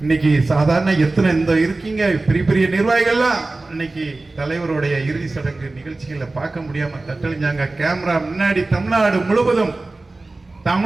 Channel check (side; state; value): left; quieter; 3.2 dB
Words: இன்னைக்கு சாதாரண எத்தனை இந்த இருக்கீங்க பெரிய பெரிய நிர்வாகிகள்லாம் இன்னைக்கு தலைவருடைய இறுதி சடங்கு நிகழ்ச்சிகளை பார்க்க முடியாம தட்டழிஞ்சாங்க. கேமரா முன்னாடி தமிழ்நாடு முழுவதும்,